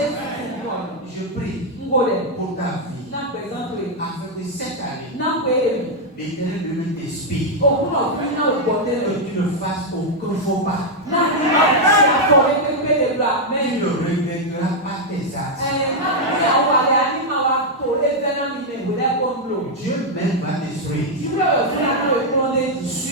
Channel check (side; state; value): both; normal; correlation -0.01